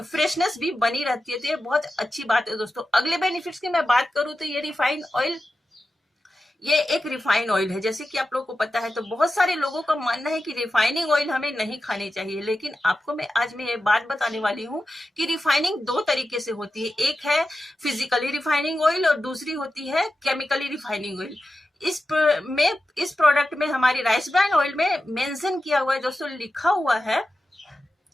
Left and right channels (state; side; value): normal; both; correlation 0.92